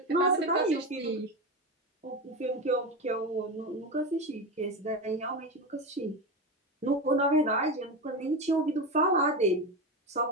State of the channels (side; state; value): both; normal; correlation 0.19